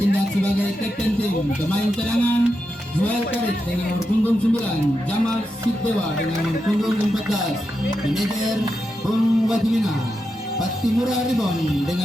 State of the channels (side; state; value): both; normal; correlation 0.87